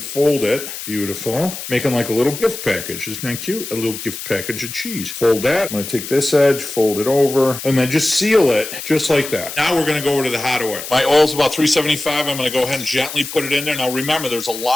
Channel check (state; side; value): noise; left; hiss, 9 dB below the sound